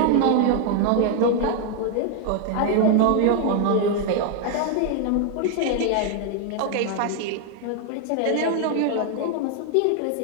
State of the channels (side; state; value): both; different; correlation 0.01